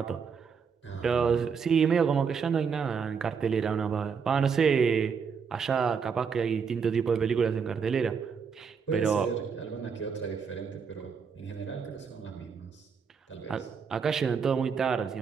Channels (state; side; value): quieter; left; 6.2 dB